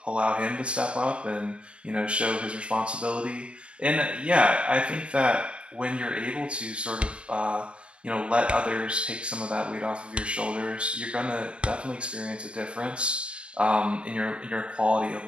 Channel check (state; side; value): late; left; 0.057 ms